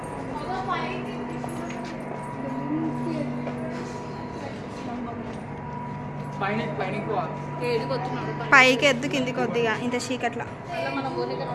పైకి ఎద్దు కిందికి కొద్దిగా ఇంత చీకట్లా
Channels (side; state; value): both; identical; correlation 1.00